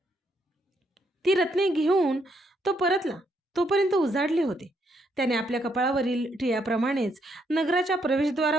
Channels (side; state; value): both; normal; correlation 0.75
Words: ती रत्ने घेऊन तो परतला. तोपर्यंत उजाडले होते. त्याने आपल्या कपाळावरील टिळ्याप्रमाणेच नगराच्या